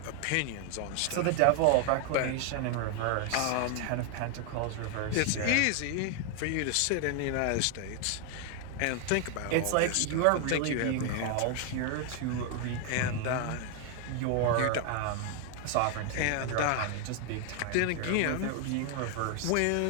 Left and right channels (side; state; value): both; different; correlation 0.00